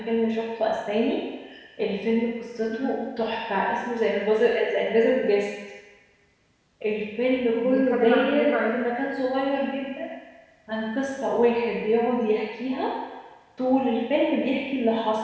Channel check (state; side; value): identical; both; correlation 1.00